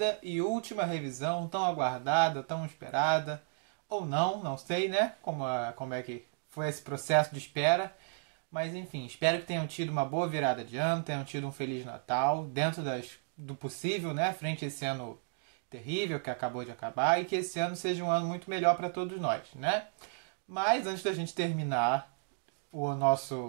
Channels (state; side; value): silent; left; digital silence